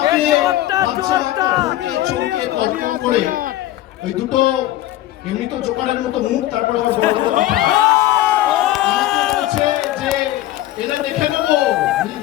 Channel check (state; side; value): quieter; right; 14.7 dB